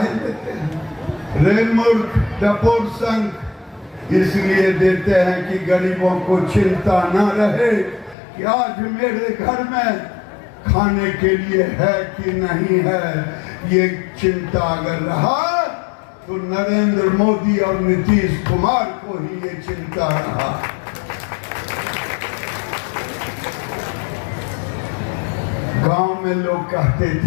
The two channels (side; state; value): right; drops out; at 8.2 s